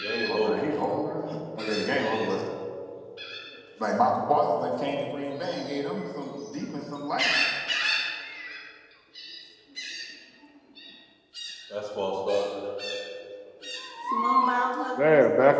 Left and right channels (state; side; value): identical; both; correlation 1.00